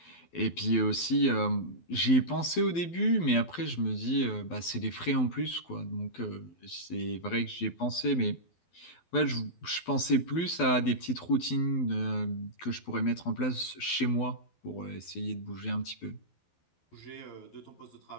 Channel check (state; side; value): late; right; 12 ms